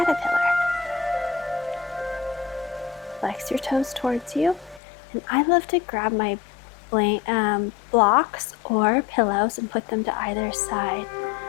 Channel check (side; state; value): right; drops out; at 4.8 s